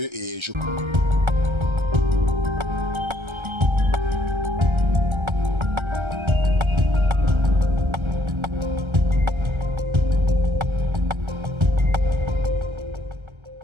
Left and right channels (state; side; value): late; left; 1.3 ms